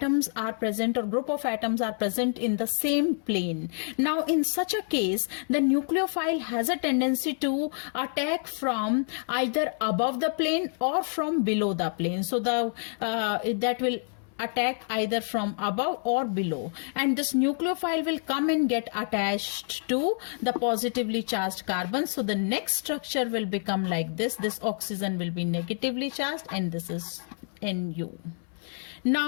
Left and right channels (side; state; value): right; silent; 59 dB below the other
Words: are present, or group of atoms are present in the same plane. Now in such a case, the nucleophile has a tendency to attack from either above the plane or from below the plane. So that will attack either from above or below, and this nucleophile will come and get attached to the positively charged carbon. So the next structure will become like this oxygen will be negatively charged, and this is Nu.